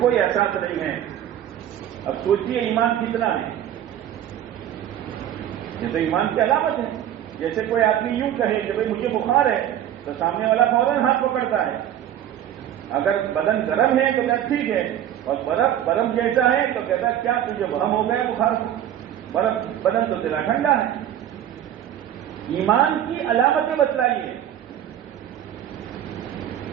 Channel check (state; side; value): quieter; left; 11.0 dB